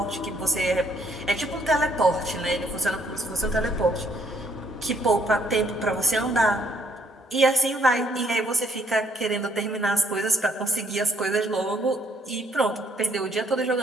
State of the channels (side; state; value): both; normal; correlation 0.68